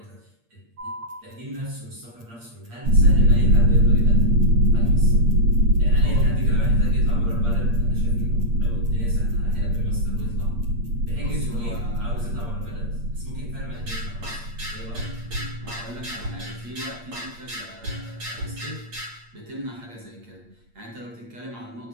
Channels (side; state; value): left; late; 8.6 ms